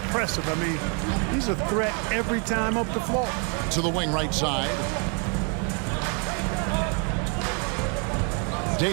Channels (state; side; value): quieter; left; 37.7 dB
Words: I mean, he's a threat every time up the floor. To the wing right side.